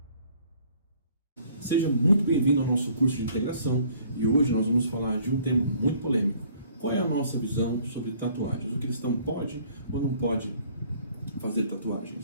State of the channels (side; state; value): both; inverted; correlation -0.58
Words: Seja muito bem-vindo ao nosso curso de integração e hoje nós vamos falar de um tema muito polêmico. Qual é a nossa visão sobre tatuagens? O cristão pode ou não pode fazer